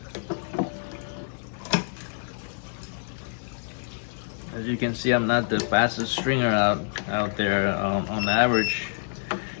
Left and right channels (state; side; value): silent; right; digital silence